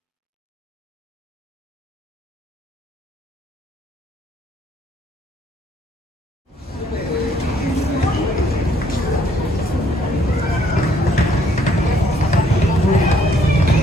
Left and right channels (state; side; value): normal; both; correlation 0.65